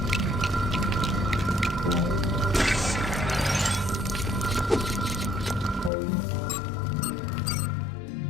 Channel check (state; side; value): drops out; right; at 5.9 s